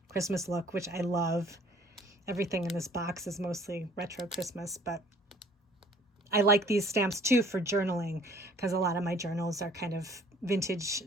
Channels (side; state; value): both; normal; correlation 0.55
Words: Christmas look, which I love. Everything in this box is mostly retro Christmas, but I like these stamps too for journaling, because a lot of my journals are kind of vintage